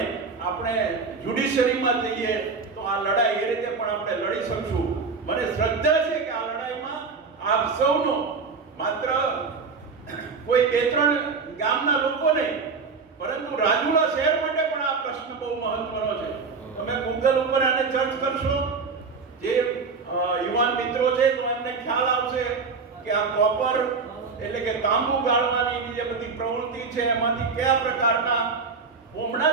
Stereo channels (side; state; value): left; quieter; 4.7 dB